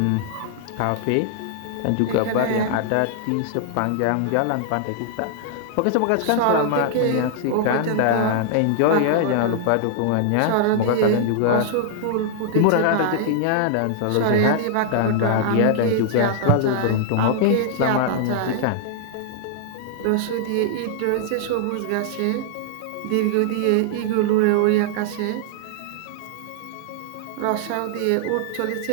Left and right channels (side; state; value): both; different; correlation -0.01